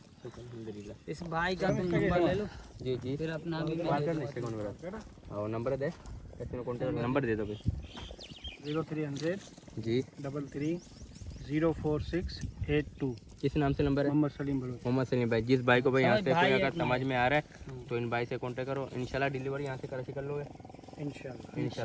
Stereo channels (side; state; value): both; identical; correlation 1.00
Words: अल्हम्दुलिल्लाह। इस भाई का तुम नंबर ले लो, जी जी फिर अपना भी बात करने से कौन मेरा और नंबर दे, कैसे कॉन्टैक्ट नंबर दे दो भाई। 0300 जी 33 04682। किस नाम से नंबर है? मोहम्मद सलीम बलोच। मोहम्मद सलीम भाई। जिस भाई को भाई यहाँ से भाई कोई अगर अपना समझ में आ रहा है तो इन भाई से कांटेक्ट करो, इंशाल्लाह डिलीवरी यहाँ से कराची कर लोगे